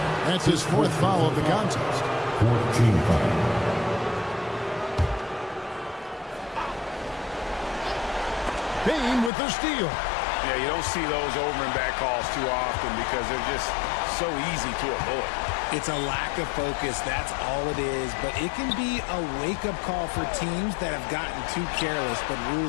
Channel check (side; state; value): right; drops out; at 9.3 s